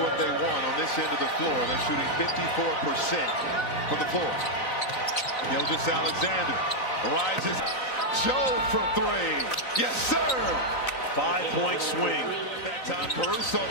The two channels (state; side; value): late; right; 3.9 ms